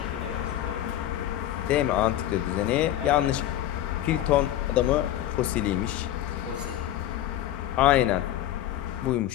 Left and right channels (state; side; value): quieter; right; 12.9 dB